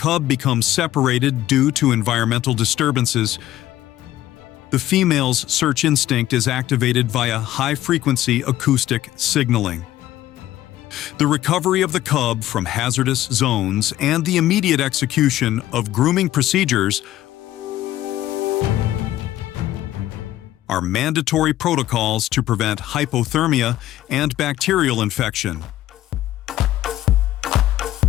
become separated due to environmental disturbances, the female's search instinct is activated via high-frequency acoustic signaling. The recovery of the cub from hazardous zones and the immediate execution of grooming procedures are mandatory protocols to prevent hypothermia and bacterial infection.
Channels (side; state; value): right; quieter; 14.0 dB